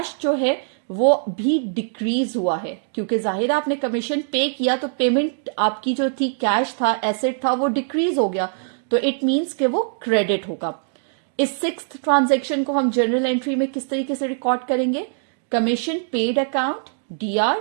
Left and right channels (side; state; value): left; silent; digital silence